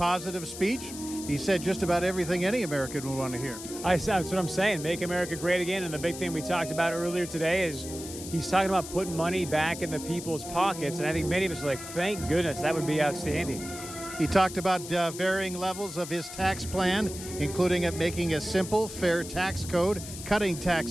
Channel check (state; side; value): noise; left; hiss, 11 dB below the sound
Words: speech. He said just about everything any American would want to hear. That's what I'm saying. Make America great again. And the big thing we talked about earlier today is he's talking about putting money back in the people's pockets. And I think many of us are like, thank goodness, that would be outstanding. He talked about varying levels of his tax plan, including it making a simple, fair tax code, cutting